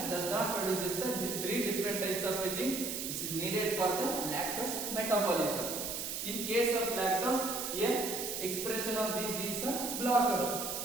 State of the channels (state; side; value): noise; right; hiss, 4 dB below the sound